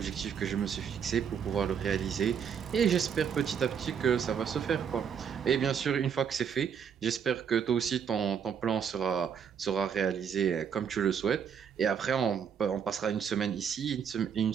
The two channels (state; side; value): quieter; left; 7.5 dB